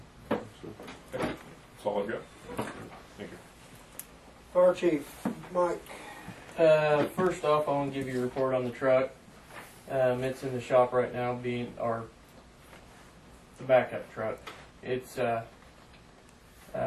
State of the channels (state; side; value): identical; both; correlation 1.00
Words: So, That's all I've got. Thank you. Fire Chief, Mike. First off, I want to give you a report on the truck. It's in the shop right now, being the backup truck. It's